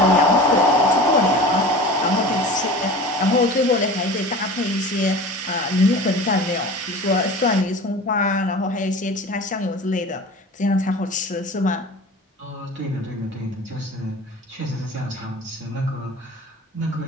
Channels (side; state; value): both; normal; correlation 0.36